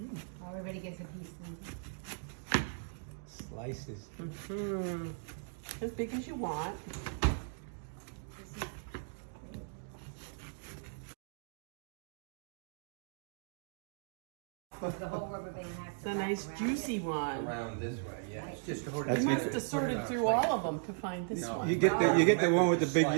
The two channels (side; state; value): left; silent; digital silence